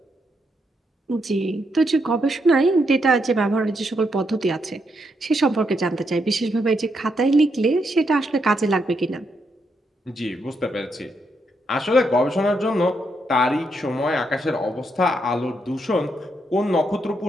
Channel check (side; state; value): both; normal; correlation 0.79